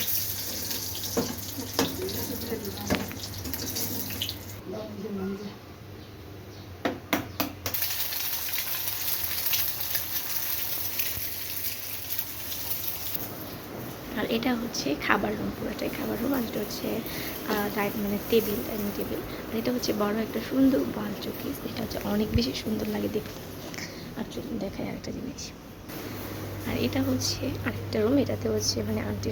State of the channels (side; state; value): both; identical; correlation 1.00